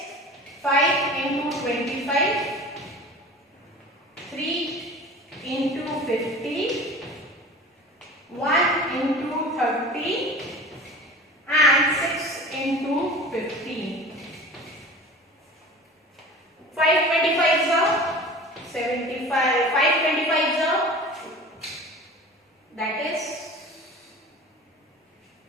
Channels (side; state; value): both; normal; correlation 0.38